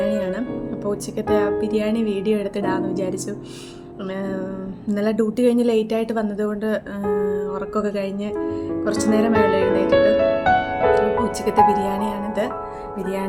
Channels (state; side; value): identical; both; correlation 1.00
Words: അപ്പോൾ ഉച്ചക്കത്തെ ആ ബിരിയാണി വീഡിയോ എടുത്തിടാമെന്ന് വിചാരിച്ചു. ഇന്നലെ ഡ്യൂട്ടി കഴിഞ്ഞ് ലേറ്റായിട്ട് വന്നതുകൊണ്ട് ഉറക്കമൊക്കെ കഴിഞ്ഞ് കുറച്ച് നേരം വേണം എഴുന്നേറ്റിട്ട്. അപ്പോൾ ഉച്ചക്കത്തെ ബിരിയാണിയാണിത്.